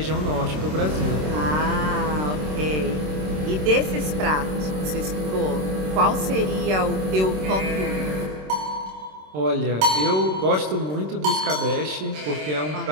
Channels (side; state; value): left; late; 26 ms